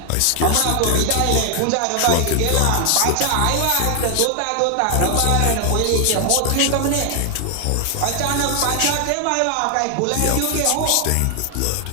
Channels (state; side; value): different; both; correlation 0.00